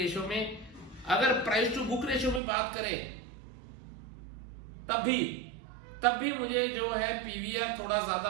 में। अगर प्राइस टू बुक रेशो में बात करें तब भी मुझे जो है पीवीआर थोड़ा ज्यादा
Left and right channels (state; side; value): drops out; left; at 2.4 s